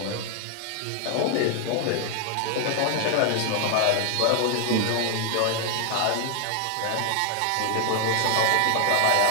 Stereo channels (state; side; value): different; both; correlation 0.00